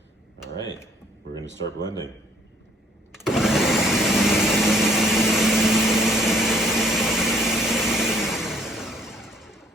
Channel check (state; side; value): normal; both; correlation 0.63